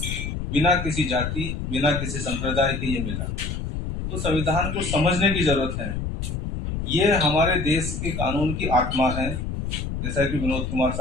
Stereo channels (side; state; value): left; noise; rumble, 4 dB below the sound